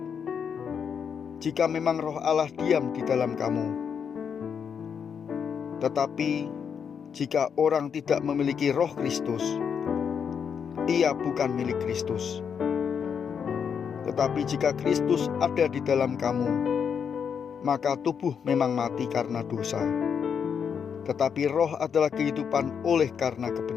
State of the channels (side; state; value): right; quieter; 7.1 dB